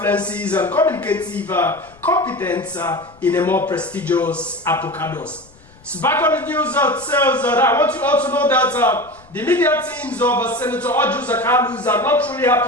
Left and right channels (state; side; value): noise; left; rumble, 27 dB below the sound